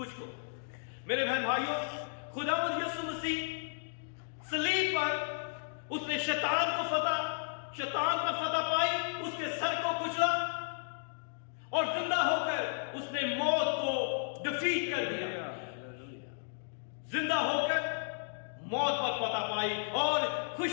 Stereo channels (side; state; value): right; silent; digital silence